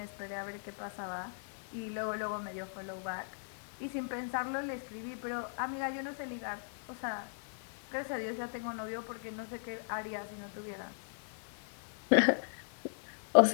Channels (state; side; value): silent; right; 53 dB below the other